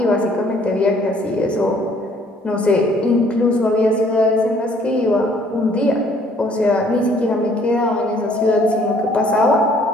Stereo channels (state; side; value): normal; both; correlation 0.61